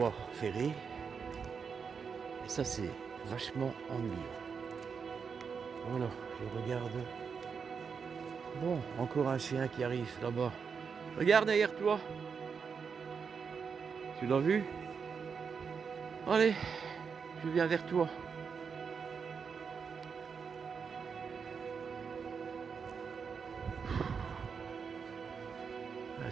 ferrées. Et ça, c'est vachement ennuyeux. Voilà, je regarde. Bon, encore un chien qui arrive là-bas. Regarde derrière toi. Tu l'as vu? Allez, je viens vers toi. Ah,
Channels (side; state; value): left; quieter; 6.0 dB